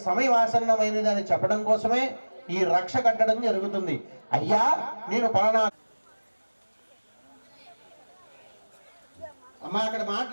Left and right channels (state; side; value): inverted; both; correlation -1.00